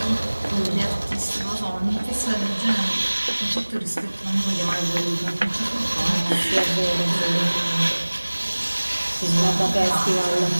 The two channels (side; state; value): both; inverted; correlation -1.00